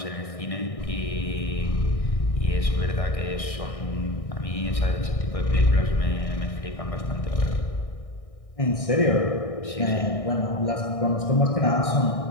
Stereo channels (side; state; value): right; late; 1.6 ms